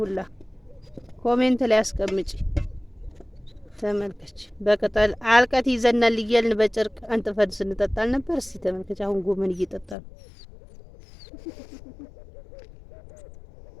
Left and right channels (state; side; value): drops out; right; at 10.0 s